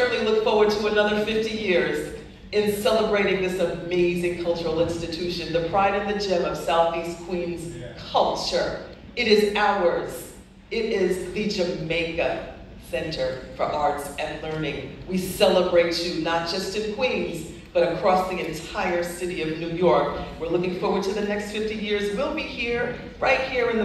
look forward to another 50 years in celebrating this amazing cultural institution, the pride and the gem of Southeast Queens culture. It is ours. It is the Jamaica Center for Arts and Learning. We celebrate you not just in Queens, but across the entire city of New York. We're looking forward to the next 50 years. We'll be here, right here in the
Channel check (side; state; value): both; identical; correlation 1.00